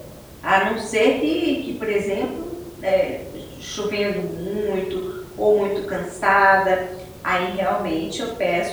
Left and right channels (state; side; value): identical; both; correlation 1.00